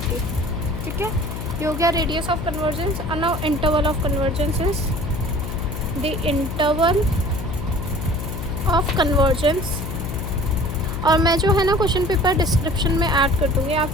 ठीक है, ये हो गया रेडियस ऑफ कन्वर्जेंस। और now interval of convergence is the interval of convergence. और मैं जो है ना क्वेश्चन पेपर डिस्क्रिप्शन में ऐड कर दूँगी, आप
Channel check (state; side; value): noise; left; hum, 6 dB below the sound